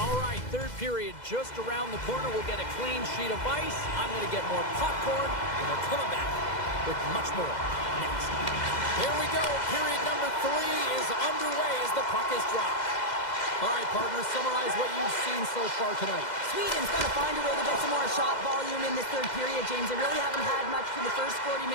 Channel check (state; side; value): late; right; 2.0 ms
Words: right, third period just around the corner. We'll get a clean sheet of ice. I'm going to get more popcorn, and we're coming back with much more next. Here we go. Period number 3 is underway as the puck is dropped. All right, partners, summarize what you've seen so far tonight. Sweden's got to find a way to get some more shot volume in this third period, James. They really haven't had much for the first 40